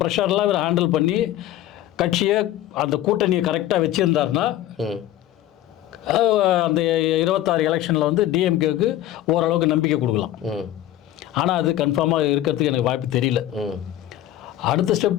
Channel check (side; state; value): right; quieter; 13.4 dB